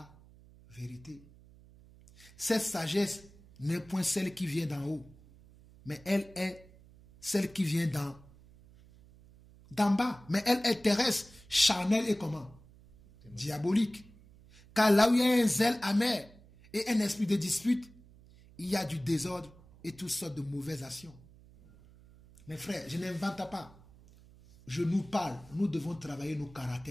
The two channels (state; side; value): noise; right; hum, 24 dB below the sound